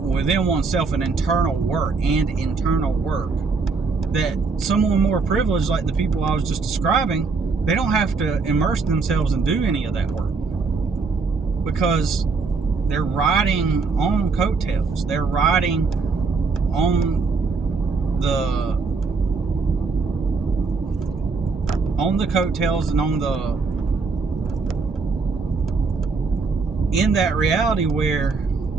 within oneself, and internal work that someone more privileged, like the people I was just describing, they don't have to immerse themselves and do any of that work. because they're riding on coattails. They're riding on the coattails and in that reality where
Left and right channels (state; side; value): quieter; left; 4.5 dB